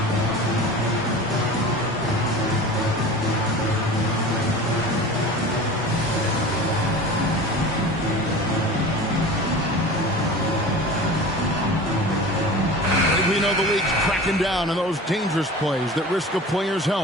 We know the league's cracking down on those dangerous plays that risk a player's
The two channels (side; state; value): both; normal; correlation 0.36